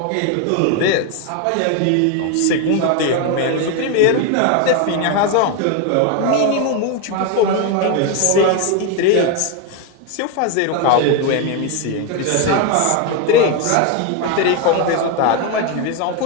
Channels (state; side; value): different; both; correlation 0.02